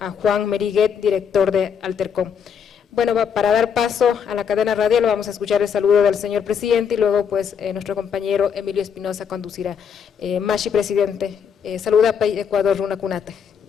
Juan Meriguet, director de Altercom. Bueno, para dar paso a la cadena radial vamos a escuchar el saludo del señor presidente y luego pues nuestro compañero Emilio Espinosa conducirá. Mashi, presidente, saluda a Ecuador, Runa Cunate.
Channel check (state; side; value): quieter; right; 7.2 dB